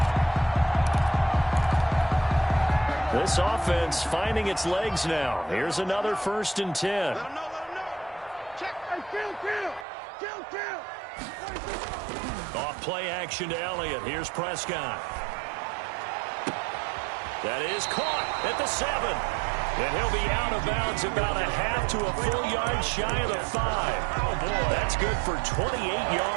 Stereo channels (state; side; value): drops out; left; at 9.9 s